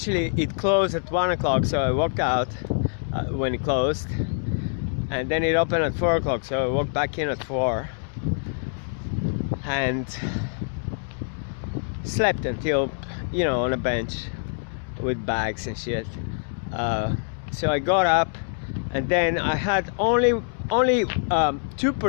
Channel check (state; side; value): silent; right; digital silence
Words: closed at 1 o'clock, so I walked out when it closed, and then it opened at 4 o'clock, so I walked back in at 4 and slept until, you know, on a bench with bags and shit. So I got up, and then I had only